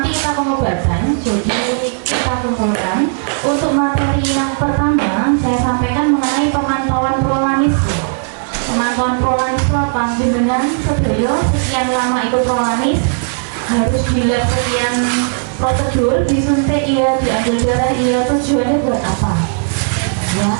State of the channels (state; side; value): silent; left; digital silence